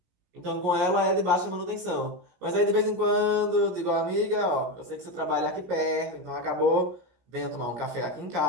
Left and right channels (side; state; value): left; late; 17 ms